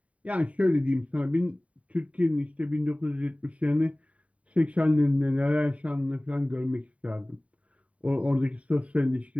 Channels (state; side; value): late; left; 0.066 ms